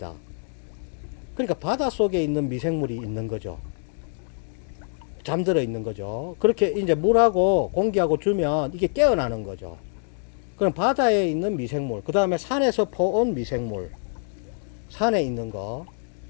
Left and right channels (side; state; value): right; silent; 62 dB below the other